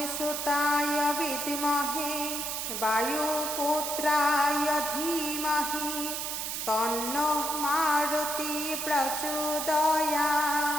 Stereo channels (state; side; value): noise; right; hiss, 3 dB below the sound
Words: विद्महे वायुपुत्राय धीमहि तन्नो मारुति